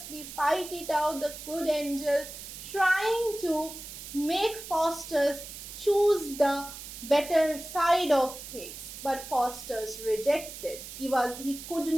fight it out. The good angel trying to make Faustus choose the better side of things, but Faustus rejected. He could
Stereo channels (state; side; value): noise; right; hiss, 12 dB below the sound